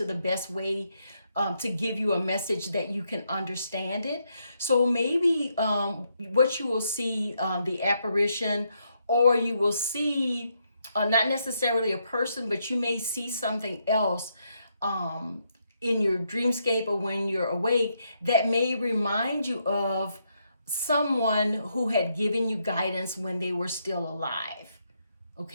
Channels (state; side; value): inverted; both; correlation -0.78